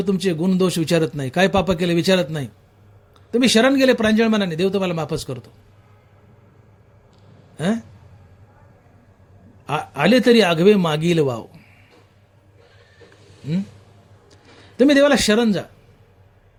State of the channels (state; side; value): identical; both; correlation 1.00